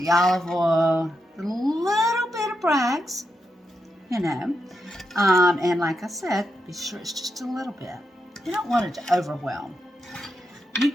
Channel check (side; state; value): both; normal; correlation 0.85